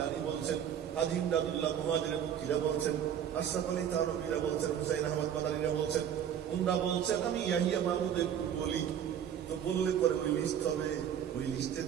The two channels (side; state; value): left; quieter; 9.2 dB